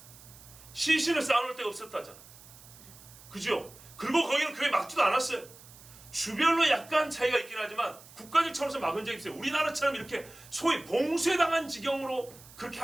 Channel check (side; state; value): right; noise; hiss, 21 dB below the sound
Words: 시신을 쌓아놓을 데가 없었다잖아. 그죠? 그리고 거기는 교회 막지도 않았어요. 주별로 약간 차이가 있긴 하지만 국가적 차원에서 막은 적이 있어요. 우리나라처럼 이렇게 소위 봉쇄당한 지경으로 그렇게